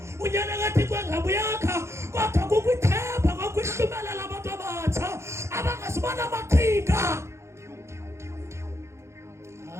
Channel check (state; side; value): late; left; 0.13 ms